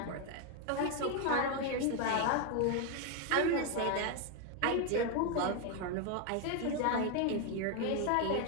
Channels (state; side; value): different; both; correlation 0.01